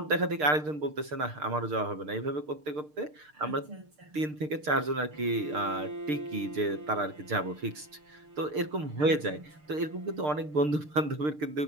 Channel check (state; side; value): late; left; 6.6 ms